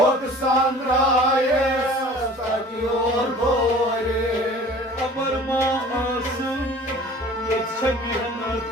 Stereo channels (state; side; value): normal; both; correlation 0.46